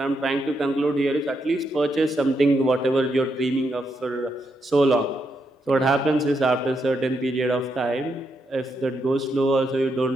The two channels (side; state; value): both; normal; correlation 0.80